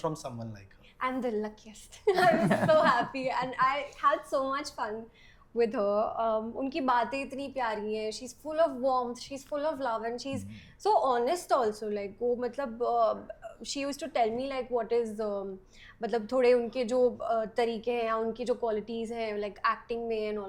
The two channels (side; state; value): both; identical; correlation 1.00